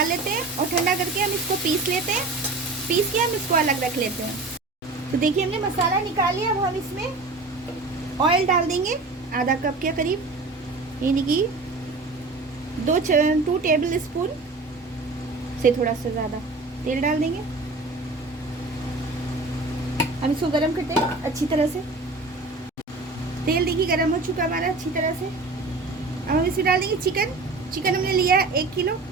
लेते हैं और ठंडा करके हम इसको पीस लेते हैं। पीस के हम इसको अलग रख लेते हैं। तो देखिए हमने मसाला निकाल लिया। अब हम इसमें ऑयल डाल देंगे आधा कप के करीब, यानी कि 2 टेबल स्पून से थोड़ा सा ज़्यादा तेल डाल देंगे। हम इसको गरम करते हैं अच्छी तरह से। तेल देखिए गरम हो चुका हमारा अच्छी तरह से। अब हम इसमें डाल देंगे चिकन। चिकन हमने लिया है 1 किलो।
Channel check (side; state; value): left; quieter; 3.5 dB